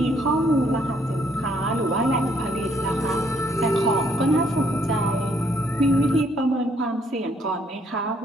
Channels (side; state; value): both; normal; correlation 0.68